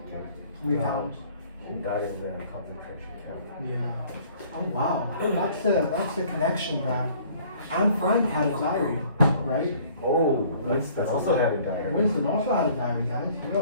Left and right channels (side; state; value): both; inverted; correlation -0.55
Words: Okay. We found. She died in the concentration camp. Yeah. Oh wow, that's the connection that Anne Frank had a diary, right? Oh, Winston also had a diary. Winston also had a diary, guys.